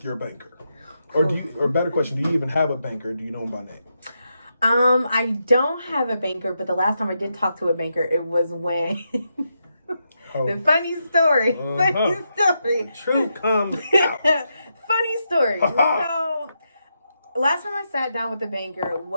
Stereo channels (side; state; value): both; inverted; correlation -0.84